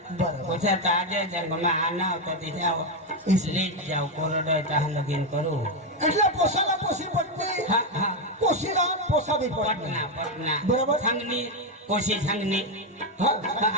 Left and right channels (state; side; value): normal; both; correlation 0.06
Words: बरं पोछा ताजे जंगमा आना तो ते जाओ इसलिए जाओ कोरडो तहां लगीन करू એટલે પોસાला પોસી पटणे हा हा पोशीला पोसा बी पटणे पटना पटना बरोबर. संगनी कोशी संगनी हा